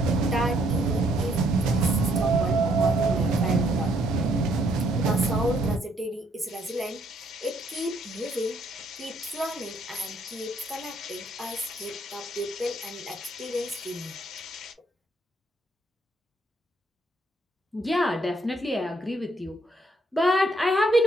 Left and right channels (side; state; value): both; normal; correlation 0.69